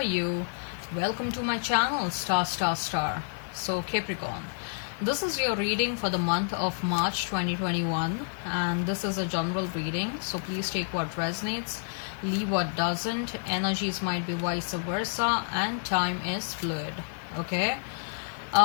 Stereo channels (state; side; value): silent; right; digital silence